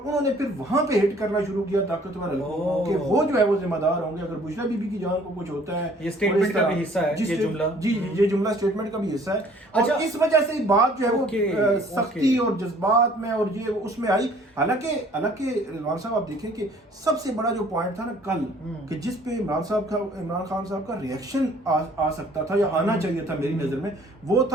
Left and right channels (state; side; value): normal; both; correlation 0.56